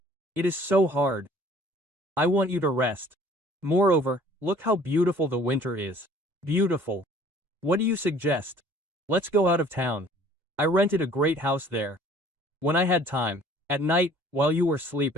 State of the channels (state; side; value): late; left; 2.1 ms